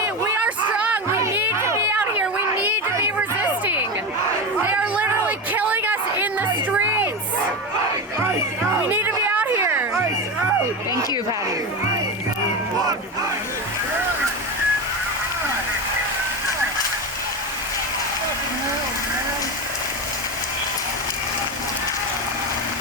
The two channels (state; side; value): normal; both; correlation 0.18